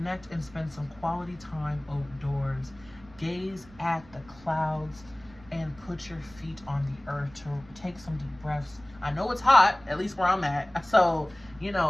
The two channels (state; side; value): noise; right; rumble, 23 dB below the sound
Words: and spend some quality time outdoors. Gaze at the clouds and put your feet on the earth to take some deep breaths. I know it's hot, at least where I'm at. So, you